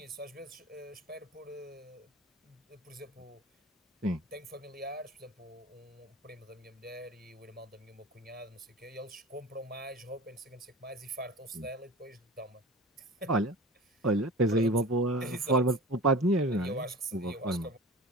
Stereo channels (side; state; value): both; normal; correlation 0.37